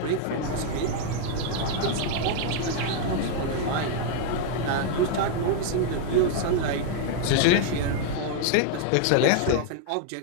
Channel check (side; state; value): both; different; correlation 0.00